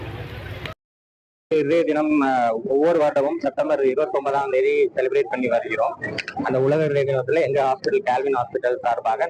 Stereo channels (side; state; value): both; identical; correlation 1.00